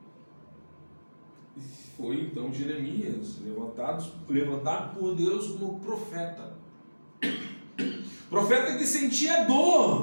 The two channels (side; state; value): both; inverted; correlation -1.00